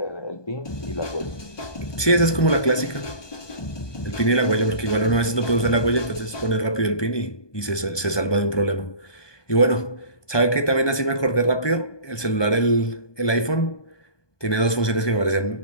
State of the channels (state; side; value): late; right; 1.2 ms